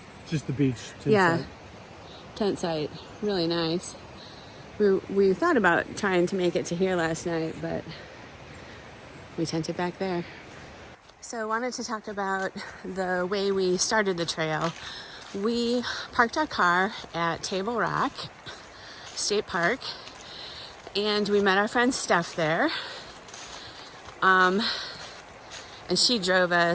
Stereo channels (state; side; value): identical; both; correlation 1.00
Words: Just the beach tent site. Tent site. Really nice. We thought about trying to make it to here last night, but we tented back there. So I wanted to talk about the way we started the trail. We parked our car at Table Rock State Park, and we met our friend Steph there. And she drove